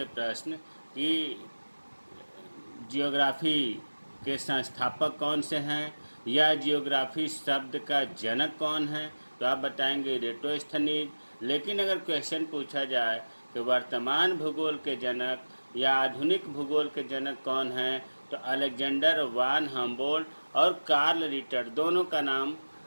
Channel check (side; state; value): both; inverted; correlation -1.00